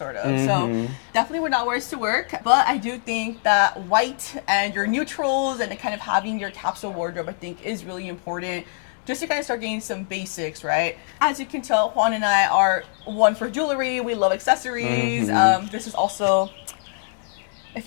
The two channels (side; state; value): right; silent; 63 dB below the other